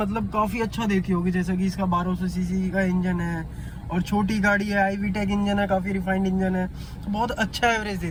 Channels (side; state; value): both; identical; correlation 1.00